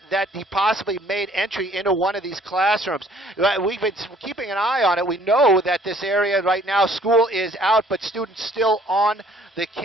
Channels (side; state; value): both; normal; correlation 0.58